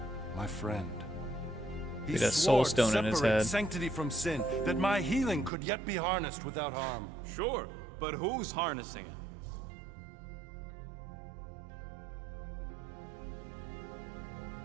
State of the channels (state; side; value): drops out; left; at 5.5 s